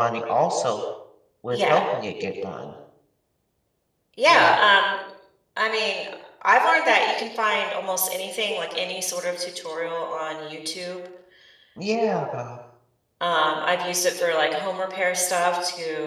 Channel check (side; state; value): both; identical; correlation 1.00